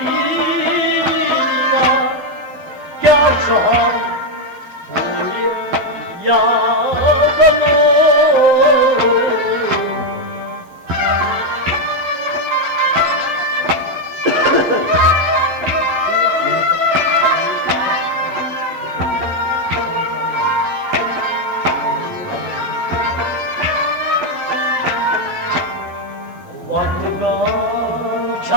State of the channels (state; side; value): late; left; 11 ms